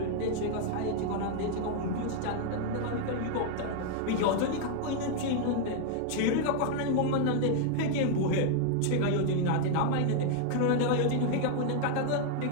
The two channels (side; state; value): both; different; correlation 0.00